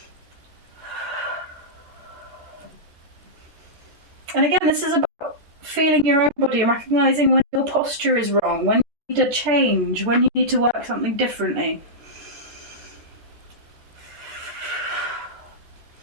And again, this is about feeling your own body and recognising when your posture is wrong, when you need a change, when you need to work something differently.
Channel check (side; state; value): left; late; 13 ms